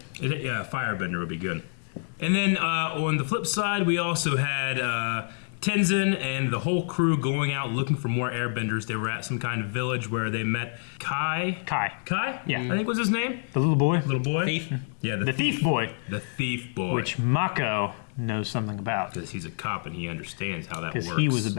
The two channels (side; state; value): right; silent; digital silence